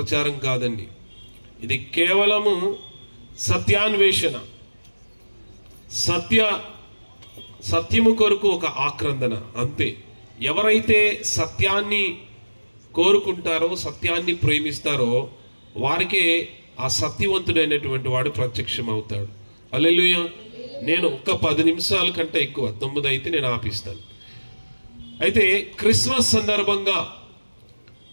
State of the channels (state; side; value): inverted; both; correlation -1.00